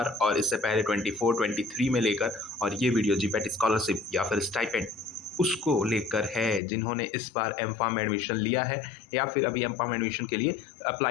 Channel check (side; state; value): right; drops out; at 6.6 s